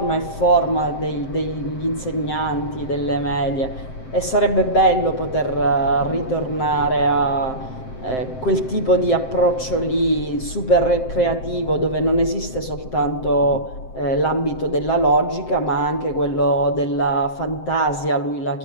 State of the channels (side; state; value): right; late; 7.7 ms